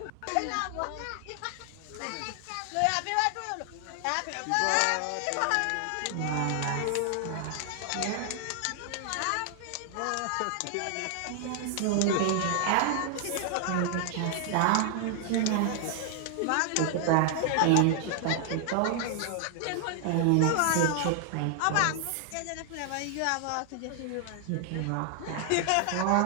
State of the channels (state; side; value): different; both; correlation 0.00